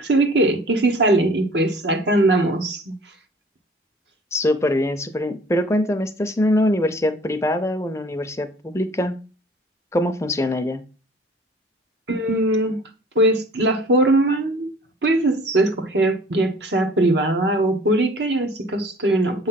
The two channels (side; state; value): both; normal; correlation 0.50